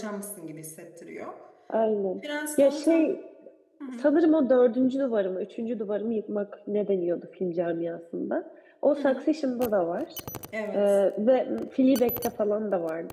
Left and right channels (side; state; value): both; identical; correlation 1.00